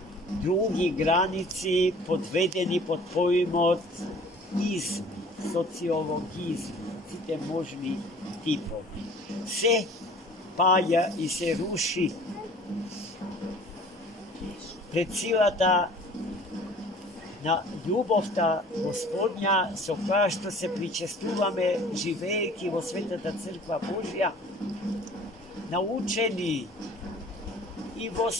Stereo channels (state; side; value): normal; both; correlation 0.49